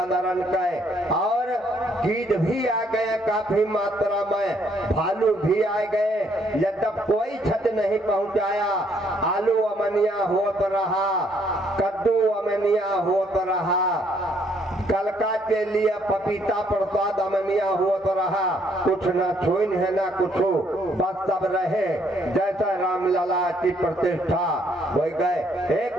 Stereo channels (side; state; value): both; normal; correlation 0.68